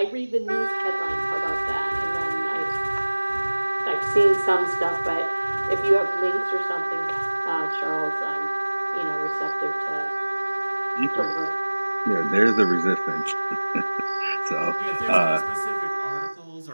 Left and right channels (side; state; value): both; inverted; correlation -1.00